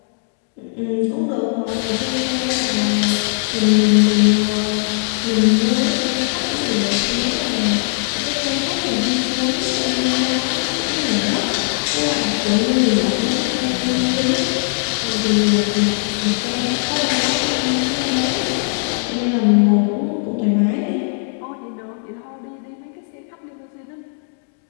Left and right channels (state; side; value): silent; right; digital silence